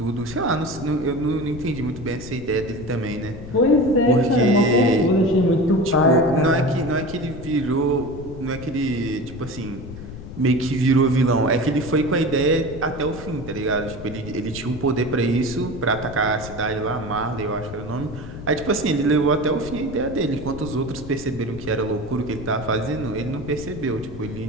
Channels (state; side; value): noise; left; rumble, 12 dB below the sound